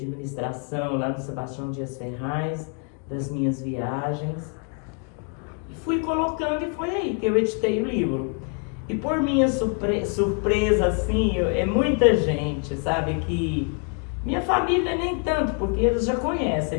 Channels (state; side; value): quieter; right; 37.7 dB